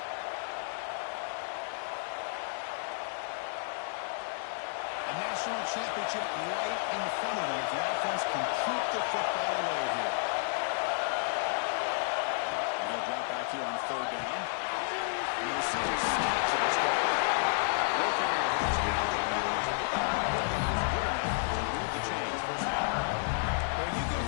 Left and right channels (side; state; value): right; silent; digital silence